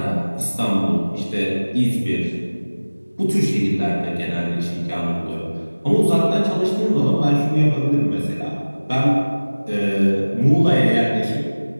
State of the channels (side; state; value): both; inverted; correlation -1.00